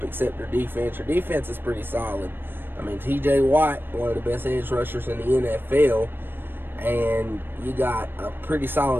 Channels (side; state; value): left; late; 0.097 ms